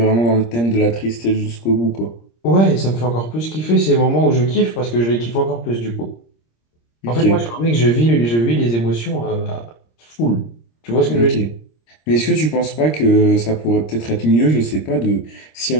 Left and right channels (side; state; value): right; late; 26 ms